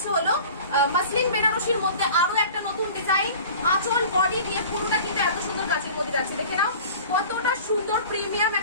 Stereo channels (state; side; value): inverted; both; correlation -0.42